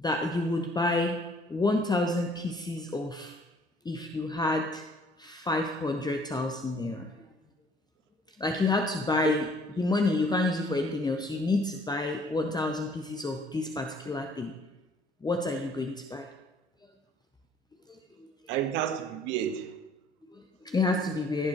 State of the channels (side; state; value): both; normal; correlation 0.58